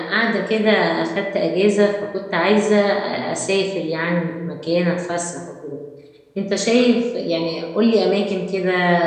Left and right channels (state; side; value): identical; both; correlation 1.00